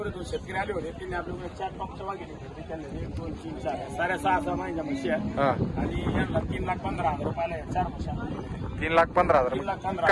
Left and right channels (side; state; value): both; identical; correlation 1.00